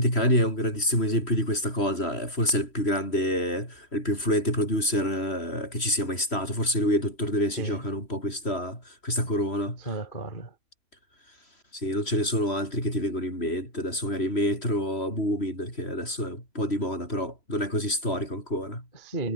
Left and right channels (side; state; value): right; late; 3.1 ms